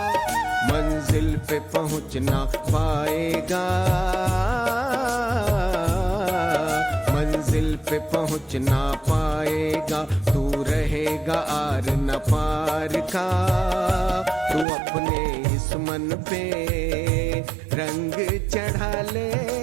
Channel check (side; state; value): left; drops out; at 14.7 s